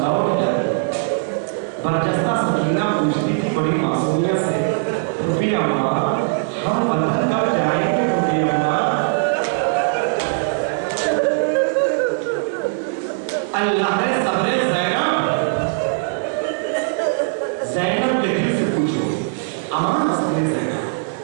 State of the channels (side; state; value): left; silent; 66 dB below the other